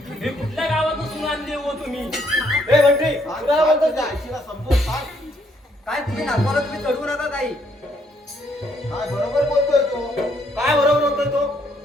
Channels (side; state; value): both; normal; correlation 0.70